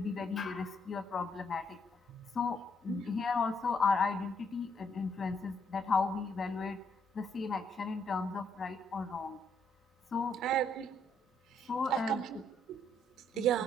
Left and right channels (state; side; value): normal; both; correlation 0.72